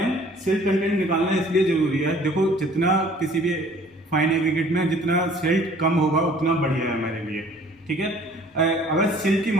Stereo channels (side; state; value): both; normal; correlation 0.53